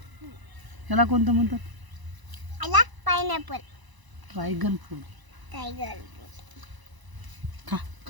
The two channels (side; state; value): left; late; 1.0 ms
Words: याला कोणतं म्हणतात? याला पायनॅपल. Dragon fruit. टायगर. खा